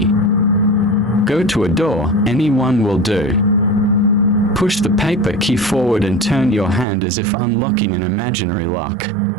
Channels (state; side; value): drops out; left; at 6.9 s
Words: Go to a door, any one will do. Push the paper key forward and turn your hand as if unlocking an imaginary lock.